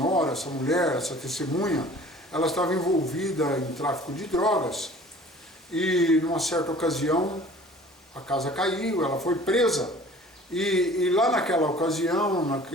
essa mulher, essa testemunha, ela estava envolvida em tráfico de drogas e, numa certa ocasião, a casa caiu, ela foi presa. E lá naquela ocasião,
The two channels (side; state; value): both; normal; correlation 0.48